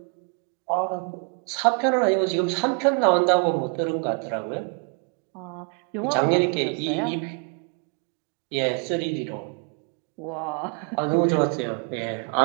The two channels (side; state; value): left; quieter; 33.3 dB